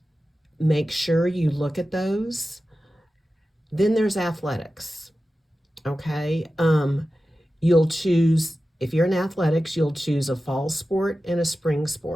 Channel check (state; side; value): normal; both; correlation 0.94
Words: Make sure you look at those. Then there's athletics. Okay. You'll choose, if you're in athletics, you'll choose a fall sport and a spring